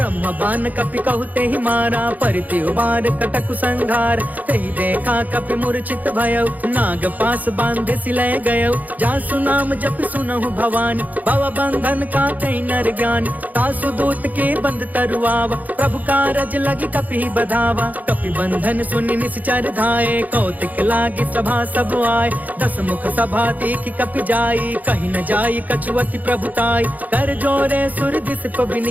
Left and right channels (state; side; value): late; left; 0.079 ms